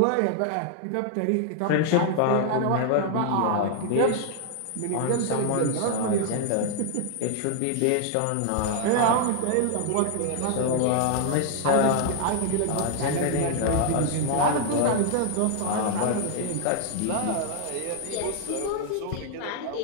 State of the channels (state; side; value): different; both; correlation 0.00